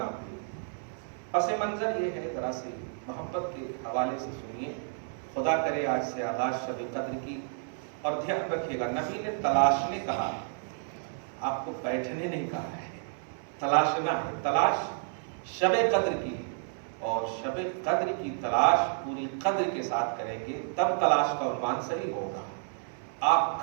ہے. پس منظر یہ ہے، ذرا سے محبت کے حوالے سے سنیے. خدا کرے آج سے آغاز شب قدر کی. اور دھیان رکھیے گا، نبی نے تلاشنے کہا، آپ کو بیٹھنے نہیں کہا ہے. تلاشنا ہے. تلاش شب قدر کی، اور شب قدر کی تلاش پوری قدر کے ساتھ کریں گے تب تلاش کا عنوان صحیح ہوگا. آپ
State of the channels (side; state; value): left; silent; 57 dB below the other